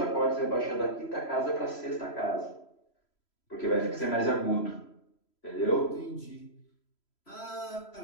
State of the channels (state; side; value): late; right; 3.0 ms